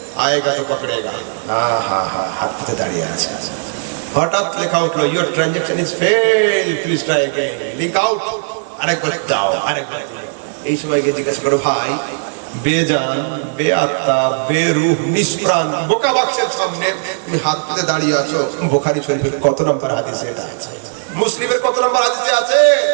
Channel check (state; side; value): silent; left; digital silence